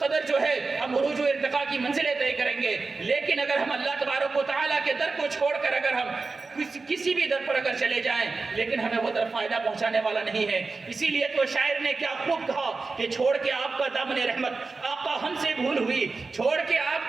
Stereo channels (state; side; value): quieter; left; 4.0 dB